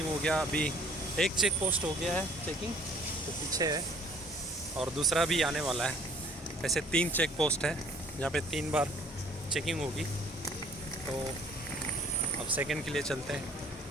हो गया। अभी एक चेक पोस्ट हो गया है चेकिंग, तो पीछे है, और दूसरा भी आने वाला है। ऐसे 3 चेक पोस्ट है जहाँ पे 3 बार चेकिंग होगी। तो अब सेकंड के लिए चलते हैं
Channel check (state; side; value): normal; both; correlation 0.56